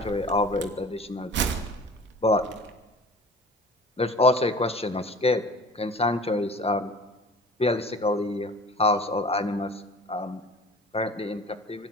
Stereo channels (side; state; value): both; normal; correlation 0.42